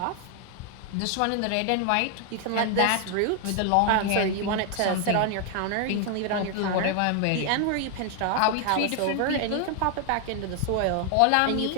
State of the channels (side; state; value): both; different; correlation 0.00